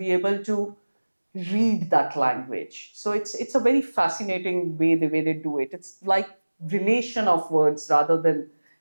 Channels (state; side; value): inverted; both; correlation -1.00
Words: able to read that language. So it's a very fascinating way the way they do it. It's like relation of words rather than